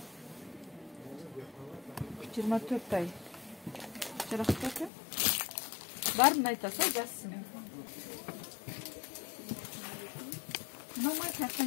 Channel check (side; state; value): right; drops out; at 4.9 s